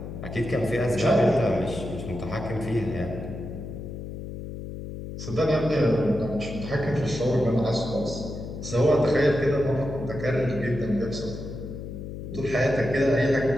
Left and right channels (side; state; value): left; noise; hum, 9 dB below the sound